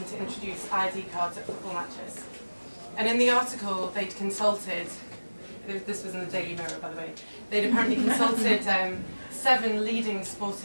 to introduce ID cards at football matches. And in the article, they'd consulted, this was in the Daily Mirror, by the way, they'd apparently consulted 7 leading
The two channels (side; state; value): both; inverted; correlation -1.00